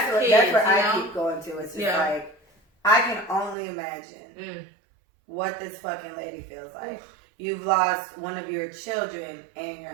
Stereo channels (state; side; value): drops out; left; at 3.6 s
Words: what I keep going to. It's just like, I can only imagine what this fucking lady feels like. You've lost one of your children and your